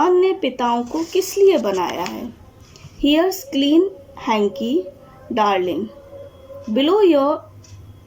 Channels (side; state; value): both; identical; correlation 1.00